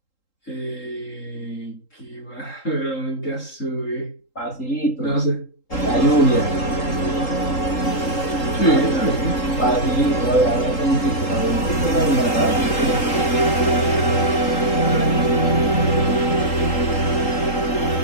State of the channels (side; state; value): right; late; 3.8 ms